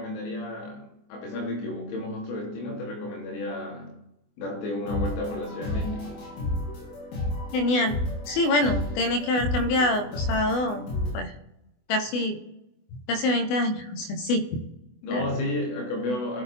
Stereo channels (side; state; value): right; late; 24 ms